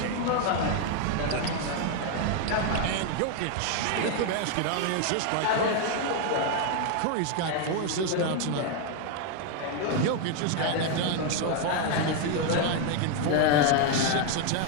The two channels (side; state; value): both; different; correlation 0.01